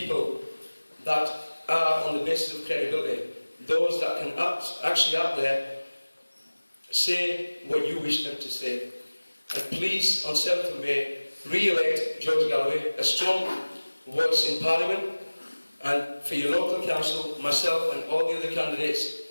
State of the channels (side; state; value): both; inverted; correlation -1.00